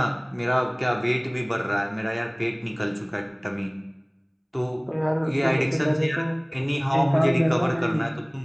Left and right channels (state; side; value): identical; both; correlation 1.00